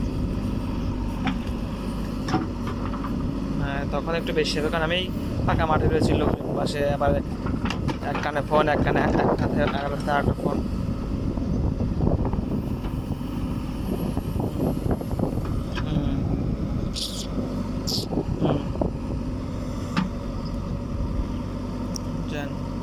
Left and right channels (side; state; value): both; identical; correlation 1.00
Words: তখন একটু বেশি হবে, কারণ আমি ফাঁকা মাঠে রয়েছি, লোকজন পাশে, আবার এক কানে ফোন, এক কানে এক হাতে আর একটা ফোন। হুম, হুম, জানি